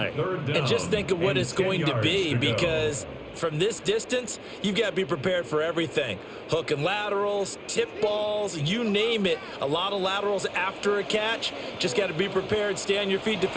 And just think of what it's going to be, because from this distance, you've got to be prepared for everything. Hook and laterals, tip balls, you name it. A lot of laterals after a catch. Just got to be prepared, stay on your feet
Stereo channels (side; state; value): both; identical; correlation 1.00